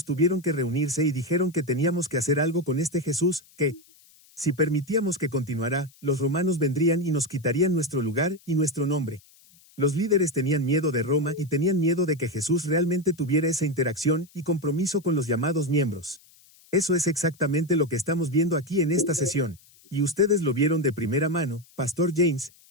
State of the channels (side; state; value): left; noise; hiss, 28 dB below the sound